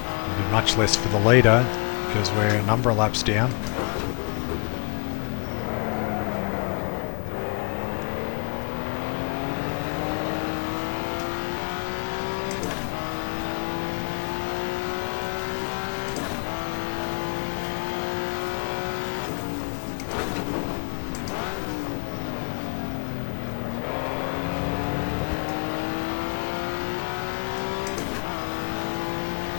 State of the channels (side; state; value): right; quieter; 35.3 dB